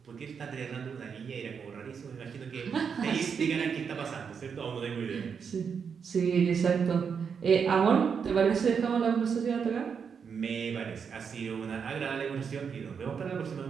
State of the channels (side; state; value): left; quieter; 6.5 dB